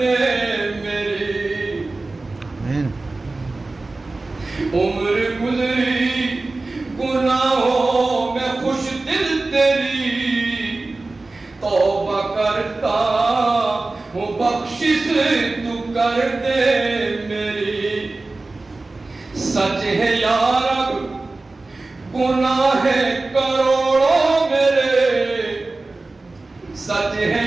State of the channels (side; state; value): left; quieter; 3.3 dB